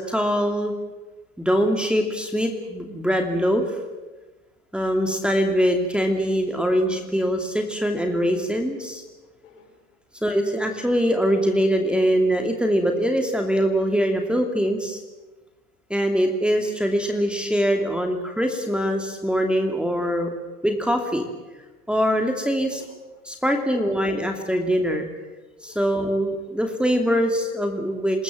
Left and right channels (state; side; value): normal; both; correlation 0.81